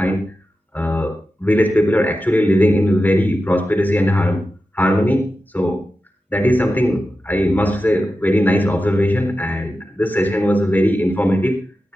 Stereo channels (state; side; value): normal; both; correlation 0.92